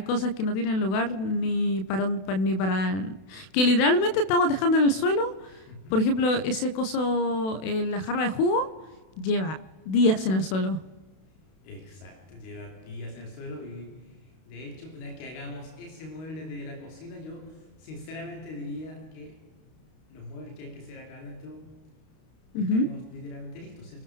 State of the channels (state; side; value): late; right; 32 ms